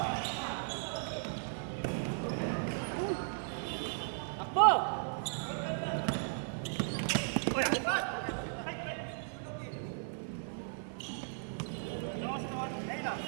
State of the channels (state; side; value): silent; left; 54 dB below the other